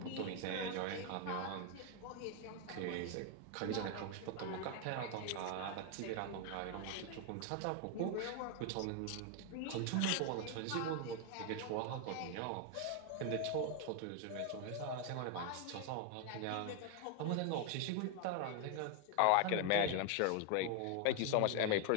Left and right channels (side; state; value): both; different; correlation 0.01